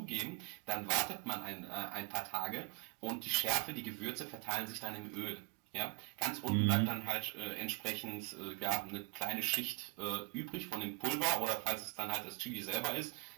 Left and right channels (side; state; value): left; quieter; 28.4 dB